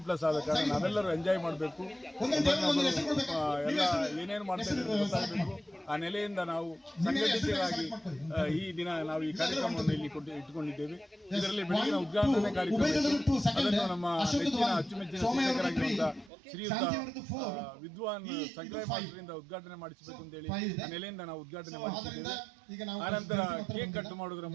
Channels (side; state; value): left; drops out; at 16.3 s